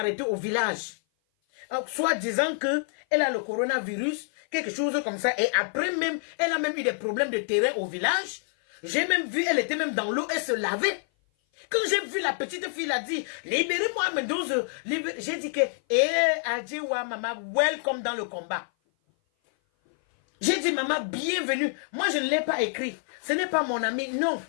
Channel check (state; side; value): silent; right; 56 dB below the other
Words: au village. Soit disant que elle a le coronavirus, quelque chose comme ça, et après même, elle a même eu des problèmes de terrain au village. J'ai même vu, elle était même dans l'eau, elle se lavait. Quand j'ai vu la petite fille, elle a dit, libérez-moi Mendoza. J'ai dit que, Adjewa maman, welcome dans le combat. J'ai dit, maman, bienvenue. Moi, je ne l'ai pas écrit. Ce n'est pas mon ami, non.